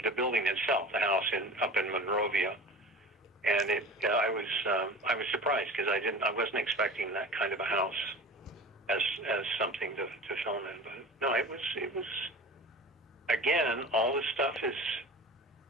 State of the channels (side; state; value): both; normal; correlation 0.36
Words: building itself, the house up in Monrovia, and I was surprised because I wasn't expecting that kind of a house as something to film in. But no, it was again, all this stuff is